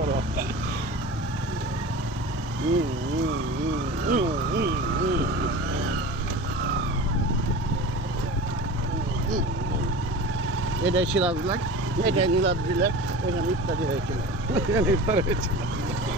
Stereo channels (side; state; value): both; normal; correlation 0.34